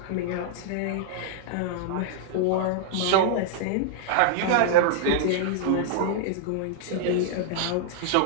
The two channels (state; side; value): different; both; correlation -0.02